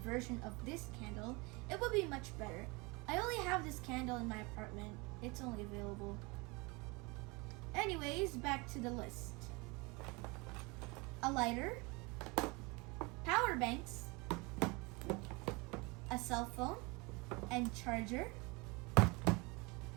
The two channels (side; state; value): left; quieter; 27.0 dB